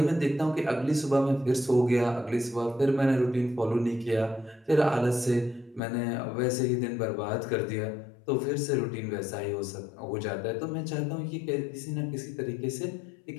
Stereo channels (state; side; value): drops out; right; at 5.8 s